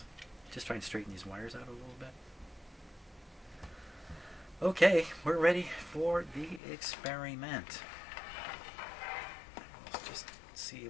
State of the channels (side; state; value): right; drops out; at 6.6 s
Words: Just try and straighten these wires out a little bit. Okay, we're ready for the experiment. Let's just see